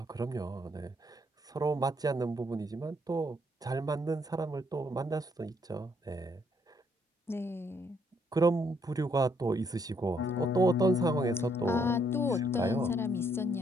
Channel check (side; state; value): both; normal; correlation 0.71